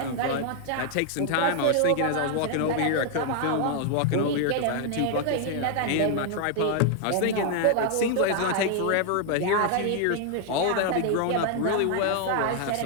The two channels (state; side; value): different; both; correlation 0.00